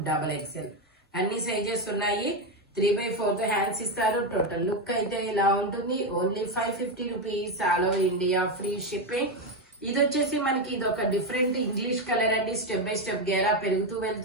అన్ని సైజెస్ ఉన్నాయి. 3/4 హ్యాండ్స్ ఇస్తారు. టోటల్ లుక్ అయితే ఇలా ఉంటుంది. Only 550 rupees. All over India free shipping. ఇది వచ్చేసి మనకి ఇది ఒక డిఫరెంట్ ఇంగ్లీష్ కలర్ అండి. స్టెప్ బై స్టెప్ గేరా పెరుగుతూ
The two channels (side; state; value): both; normal; correlation 0.09